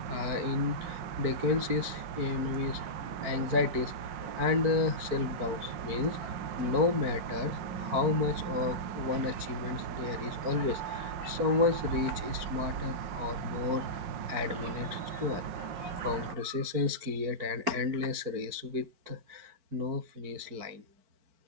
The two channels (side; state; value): left; late; 4.5 ms